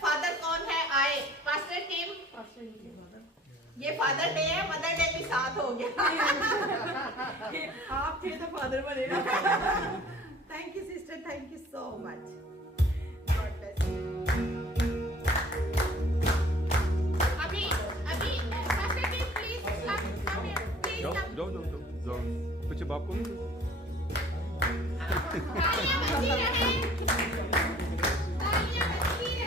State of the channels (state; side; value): normal; both; correlation 0.51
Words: फादर कौन है आए? Pastor team. ये फादर डे है, मदर डे भी साथ हो गया। आप थे तो फादर बनेगा। Thank you sister, thank you so much. God bless you. अभी pastor team please come here please come. जाओ कुछ बाप को तालियां बजती रहे, तालियां बजती